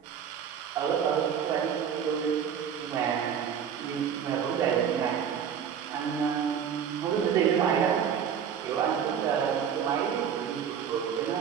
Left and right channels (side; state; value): left; quieter; 8.1 dB